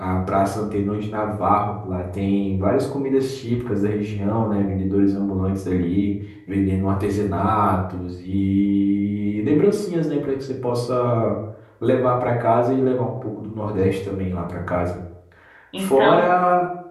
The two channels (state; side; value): identical; both; correlation 1.00